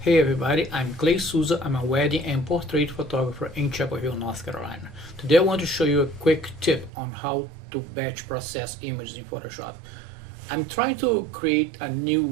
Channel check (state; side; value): drops out; left; at 6.9 s